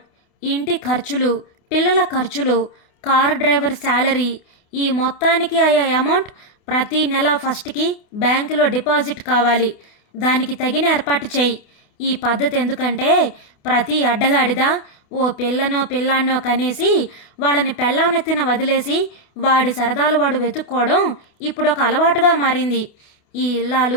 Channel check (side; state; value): right; late; 28 ms